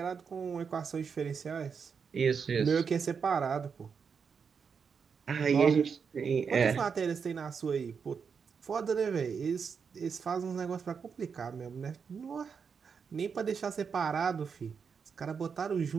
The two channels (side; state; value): left; quieter; 6.1 dB